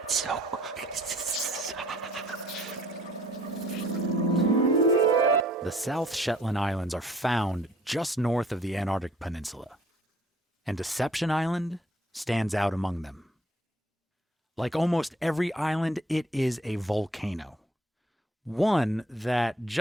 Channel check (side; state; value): both; normal; correlation 0.59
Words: The South Shetland Islands are found just north of the Antarctic Peninsula, and Deception Island stands out among them. Like almost every island, it is a volcano. One that